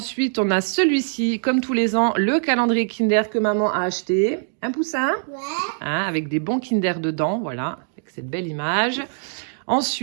on a celui-ci, comme tous les ans, le calendrier Kinder que maman a acheté. Un Poussin? Ouais. Hein, avec des bons Kinder dedans, voilà, avec cette belle image.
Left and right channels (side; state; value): left; silent; digital silence